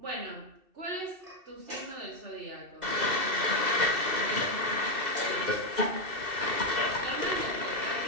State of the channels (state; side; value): late; left; 2.7 ms